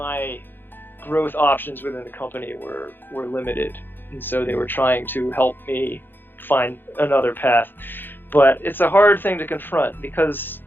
growth options within the company were limited, and so they were trying to help me find another path. But it's a hard thing to confront because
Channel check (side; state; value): right; late; 0.097 ms